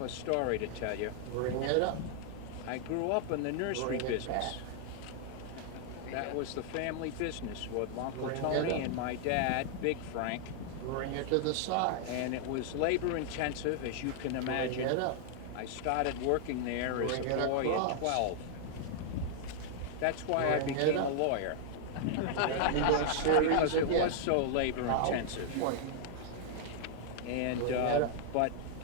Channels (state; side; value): different; both; correlation 0.00